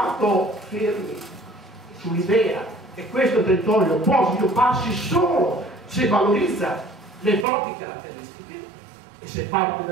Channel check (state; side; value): drops out; left; at 7.5 s